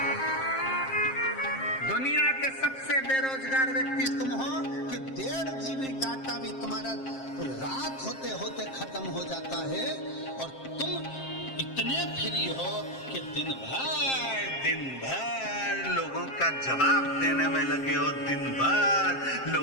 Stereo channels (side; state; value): right; late; 7.5 ms